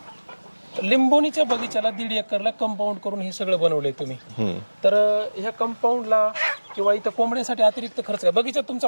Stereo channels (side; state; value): both; inverted; correlation -1.00